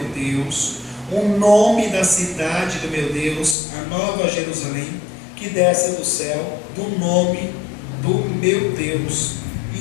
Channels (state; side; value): drops out; right; at 3.6 s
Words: Deus, o nome da cidade do meu Deus, a nova Jerusalém, que desce do céu, do nome do meu Deus,